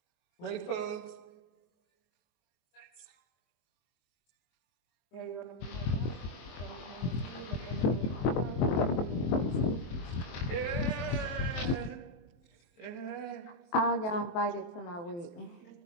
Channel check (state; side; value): late; right; 23 ms